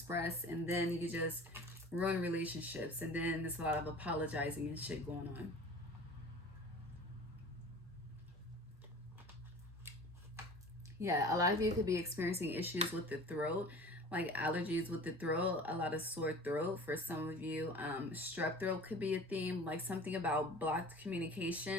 and then you just ruin relationships, and then there's a lot of apologizing and shit going on. Yeah, a lot of you could be experiencing issues with the throat, like allergies with the throat, a lot of sore throat. For some of you, strep throat could be a theme, like something about blocked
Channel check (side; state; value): both; normal; correlation 0.41